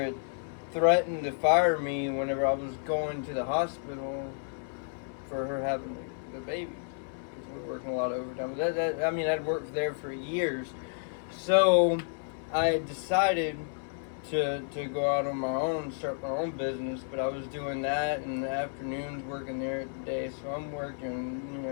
had threatened to fire me whenever I was going to the hospital for her having the baby, because we were working a lot of overtime. But I'd worked there for years, so I decided to go out on my own, start my own business, but I was doing that in the afternoons, working there at the day, so I'm working,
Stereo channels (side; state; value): right; silent; 57 dB below the other